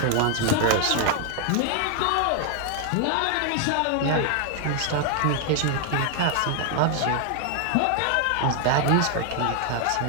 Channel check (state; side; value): different; both; correlation 0.00